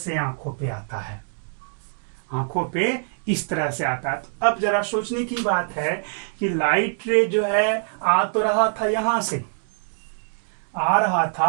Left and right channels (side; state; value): left; silent; digital silence